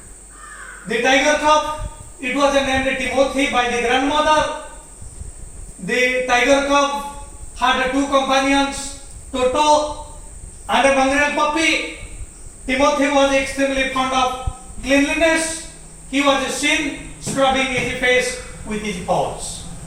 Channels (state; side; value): identical; both; correlation 1.00